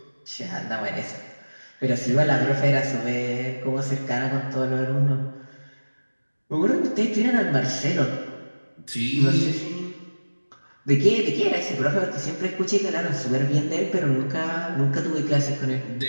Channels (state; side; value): inverted; both; correlation -1.00